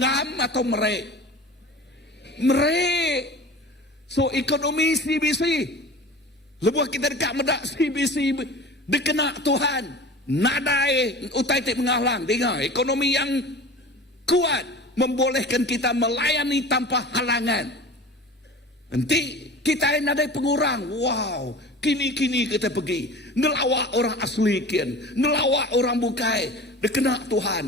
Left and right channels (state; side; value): normal; both; correlation 0.38